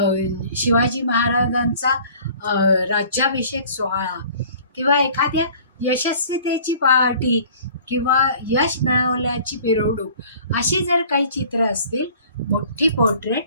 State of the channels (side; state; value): both; inverted; correlation -0.50